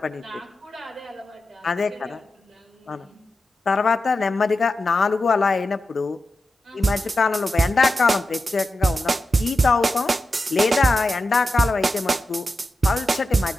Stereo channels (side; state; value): both; normal; correlation 0.90